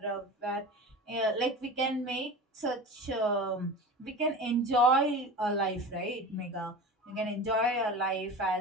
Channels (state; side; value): normal; both; correlation 0.32